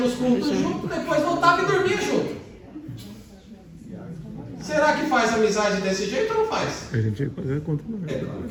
cultos junto, depois voltava e dormia junto. Será que faz amizade desse jeito ou não faz? A gente ia fazer conta não. É claro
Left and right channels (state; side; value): identical; both; correlation 1.00